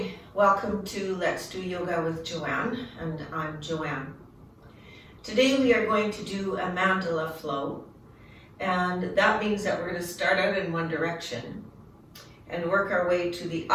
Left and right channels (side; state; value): both; identical; correlation 1.00